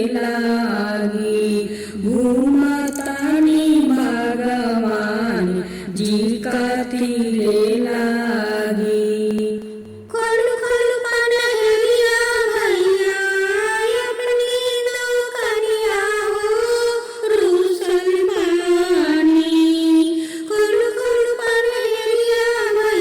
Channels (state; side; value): identical; both; correlation 1.00